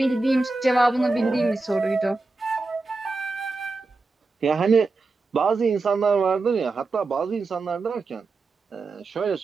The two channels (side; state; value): left; quieter; 3.6 dB